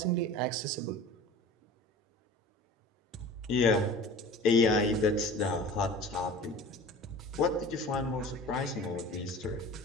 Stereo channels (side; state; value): both; normal; correlation 0.40